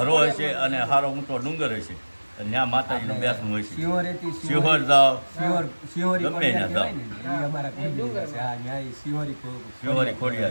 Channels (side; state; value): both; inverted; correlation -1.00